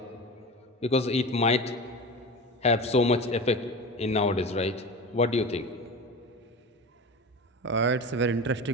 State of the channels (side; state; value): both; normal; correlation 0.29